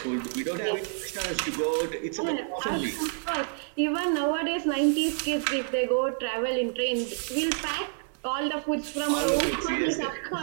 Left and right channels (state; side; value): silent; left; 59 dB below the other